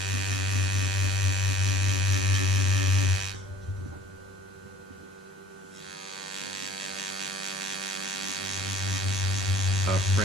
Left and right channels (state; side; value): normal; both; correlation 0.51